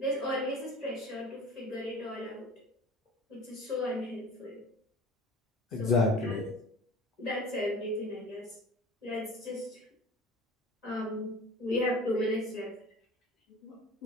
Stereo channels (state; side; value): normal; both; correlation 0.42